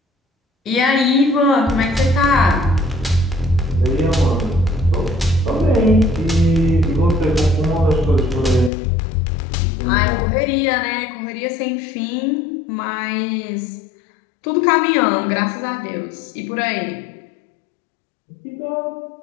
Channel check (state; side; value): drops out; right; at 8.7 s